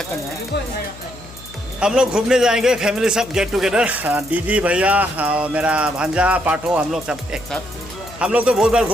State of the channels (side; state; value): left; noise; hum, 19 dB below the sound